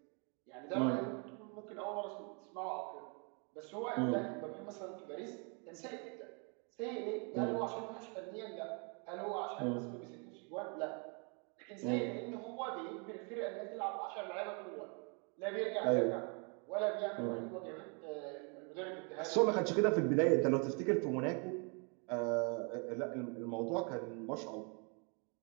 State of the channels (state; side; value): quieter; left; 36.0 dB